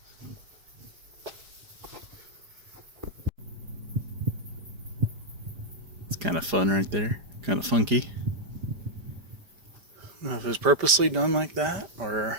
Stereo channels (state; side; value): late; left; 5.1 ms